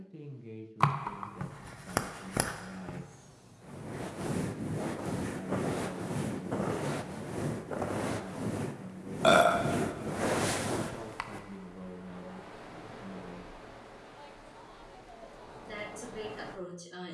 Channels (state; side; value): identical; both; correlation 1.00